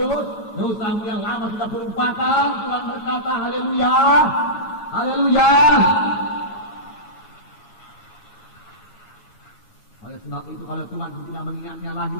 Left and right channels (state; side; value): late; right; 9.6 ms